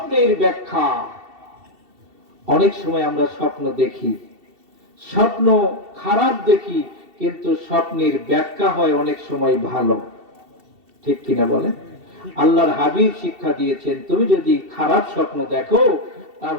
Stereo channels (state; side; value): late; left; 2.7 ms